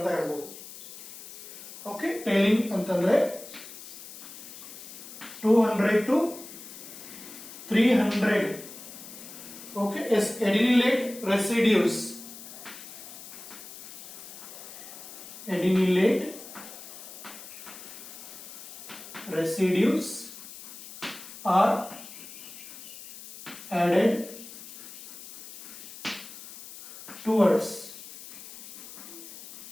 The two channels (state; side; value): noise; left; hiss, 14 dB below the sound